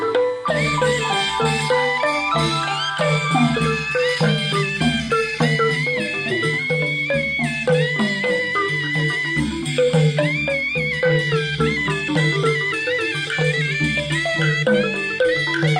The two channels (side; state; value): both; identical; correlation 1.00